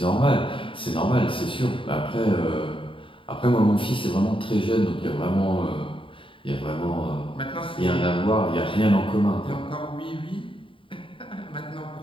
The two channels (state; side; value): late; right; 0.25 ms